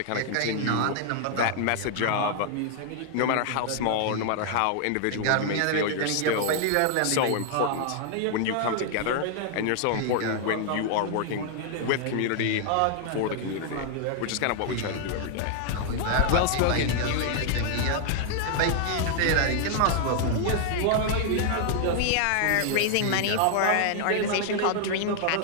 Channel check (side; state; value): both; different; correlation 0.00